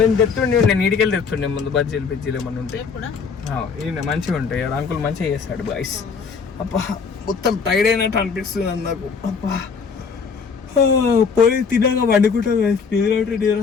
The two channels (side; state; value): right; quieter; 5.6 dB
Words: తెస్తుండే, నేను ఇంటికి వెళ్ళి తెస్తుండే ముందు బజ్జీలు బిజ్జీలు ఏమన్నా ఉంటాయి. ఈయన మంచిగా ఉంటాయి. అంకుల్ మంచిగా చేస్తాడు బాయ్స్. అబ్బా మొత్తం టైర్డ్ అయినట్టు అనిపిస్తుంది నాకు. అబ్బా పోయి తినగా వండుకుంటా గైస్. నిద్ర ఉంటే నిద్ర